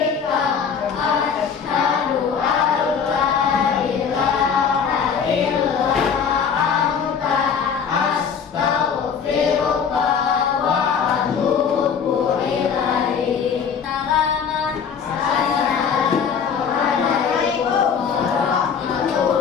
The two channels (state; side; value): quieter; right; 6.7 dB